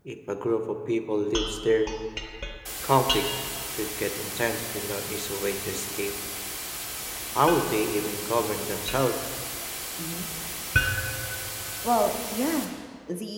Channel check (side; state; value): both; identical; correlation 1.00